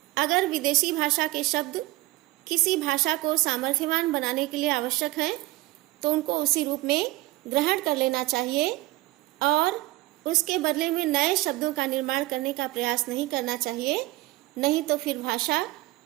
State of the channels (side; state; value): left; quieter; 19.0 dB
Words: अगर विदेशी भाषा के शब्द किसी भाषा को सामर्थ्यवान बनाने के लिए आवश्यक हैं तो उनको उसी रूप में ग्रहण कर लेना चाहिए और उसके बदले में नए शब्दों का निर्माण करने का प्रयास नहीं करना चाहिए, नहीं तो फिर भाषा